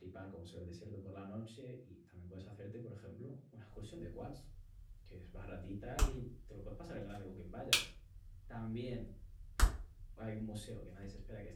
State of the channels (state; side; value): identical; both; correlation 1.00